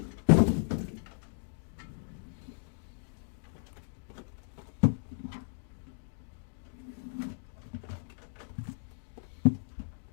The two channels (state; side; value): silent; right; digital silence